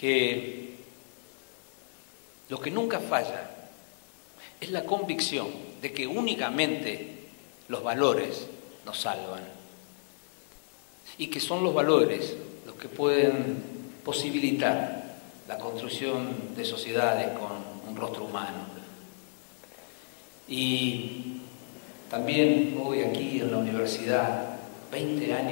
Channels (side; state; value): right; silent; digital silence